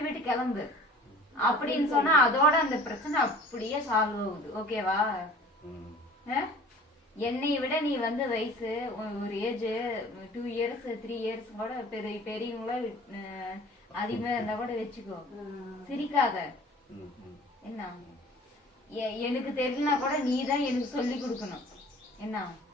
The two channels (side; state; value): both; normal; correlation 0.47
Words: விட்டு கிளம்பு அப்படின்னு சொன்னா அதோட அந்த பிரச்சனை அப்படியே சால்வ் ஆகுது. ஓகேவா? என்னை விட நீ வந்து வயசு ஒரு ஏஜ் 2 years 3 years கூட பெரியவங்கள அதிகமா இருந்தா கூட வச்சுக்கோ. சிரிக்காத. என்ன, எனக்கு தெரியலனா கூட நீதான் எனக்கு சொல்லி கொடுக்கணும்.